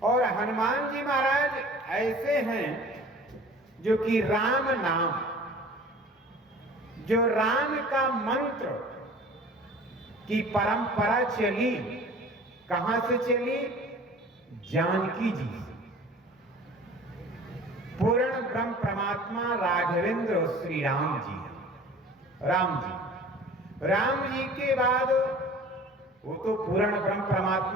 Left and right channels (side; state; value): both; normal; correlation 0.45